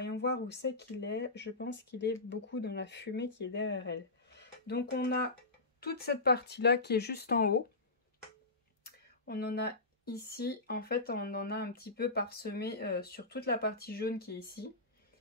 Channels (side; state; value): right; quieter; 3.2 dB